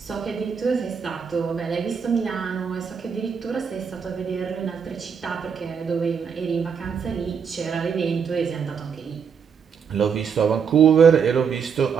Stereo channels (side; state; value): left; quieter; 6.7 dB